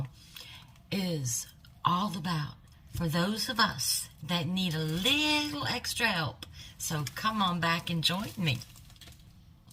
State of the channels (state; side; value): identical; both; correlation 1.00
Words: is all about for those of us that need a little extra help. So come on back and join me.